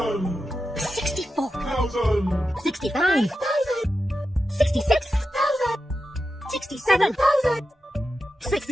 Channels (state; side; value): normal; both; correlation 0.90